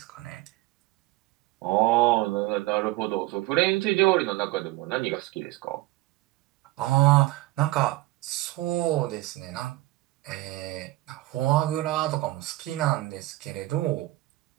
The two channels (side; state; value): left; quieter; 18.8 dB